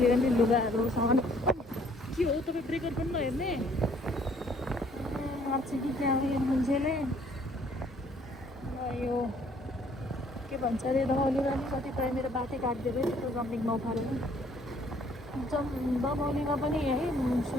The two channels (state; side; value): normal; both; correlation 0.62